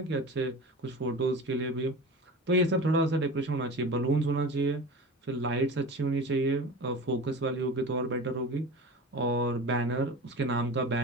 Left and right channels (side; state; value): both; normal; correlation 0.32